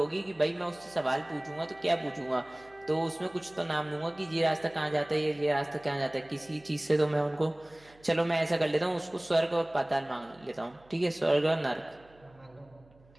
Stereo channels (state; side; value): noise; right; hum, 28 dB below the sound